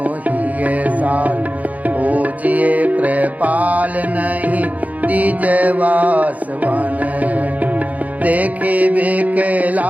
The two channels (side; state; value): left; late; 0.075 ms